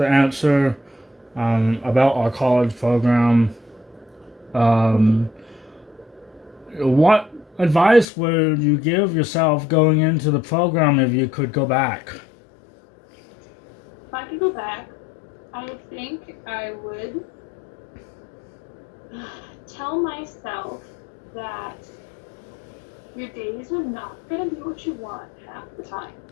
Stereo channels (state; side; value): drops out; right; at 8.1 s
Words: answer about our college program. What advice would you give yourself going into the program if you could go back? If I could go back, I think I would tell myself that your days are not going to be what you want half the time,